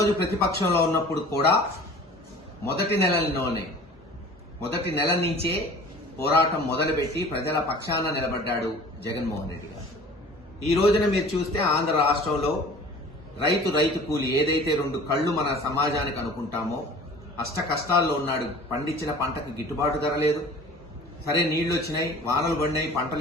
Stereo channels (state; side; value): normal; both; correlation 0.45